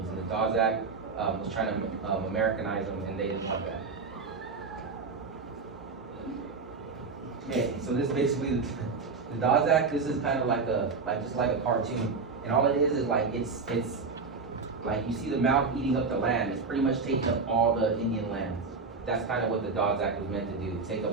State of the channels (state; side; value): quieter; left; 4.6 dB